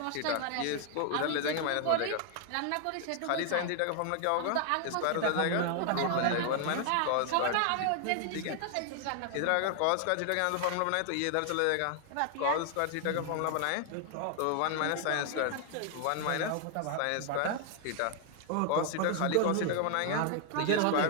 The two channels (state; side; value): different; both; correlation 0.00